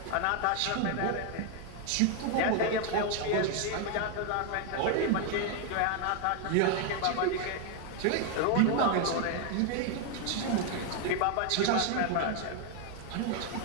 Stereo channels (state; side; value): different; both; correlation 0.01